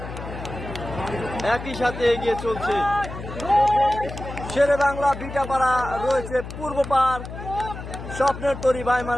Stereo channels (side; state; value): left; noise; hum, 10 dB below the sound